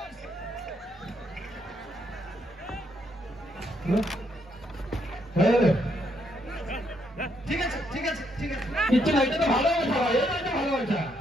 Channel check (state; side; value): normal; both; correlation 0.74